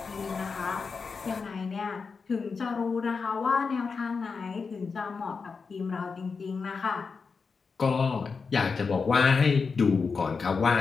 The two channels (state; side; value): quieter; right; 5.0 dB